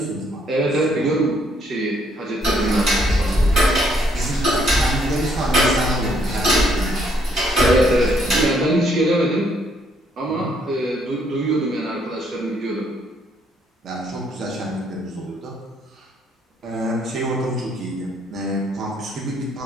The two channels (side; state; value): both; normal; correlation 0.69